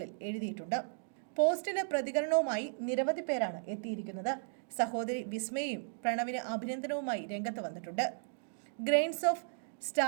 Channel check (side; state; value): left; silent; digital silence